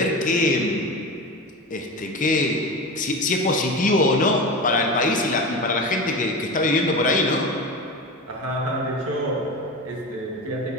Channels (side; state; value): both; normal; correlation 0.26